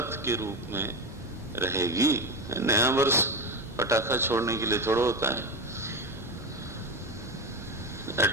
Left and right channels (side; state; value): both; normal; correlation 0.19